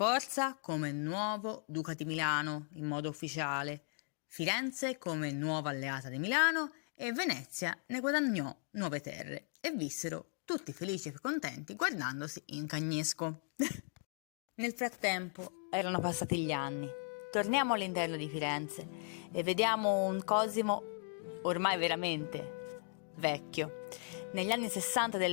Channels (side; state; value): right; silent; 53 dB below the other